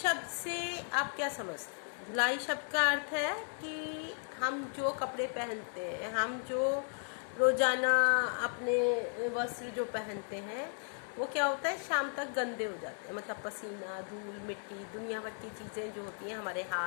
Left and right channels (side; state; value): right; silent; 54 dB below the other